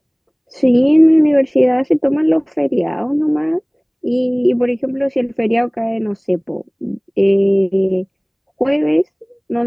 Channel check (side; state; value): both; identical; correlation 1.00